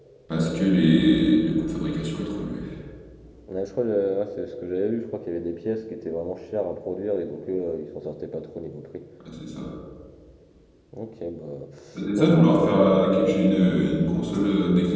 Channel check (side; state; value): both; identical; correlation 1.00